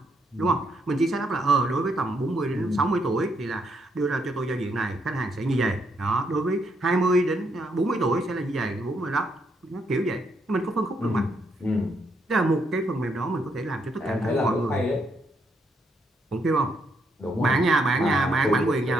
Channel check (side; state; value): both; normal; correlation 0.75